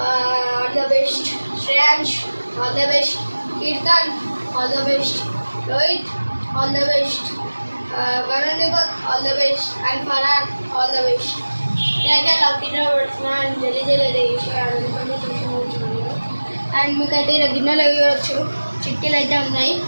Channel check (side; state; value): both; inverted; correlation -1.00